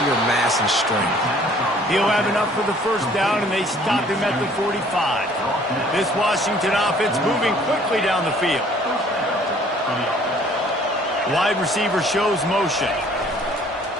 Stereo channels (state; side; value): normal; both; correlation 0.57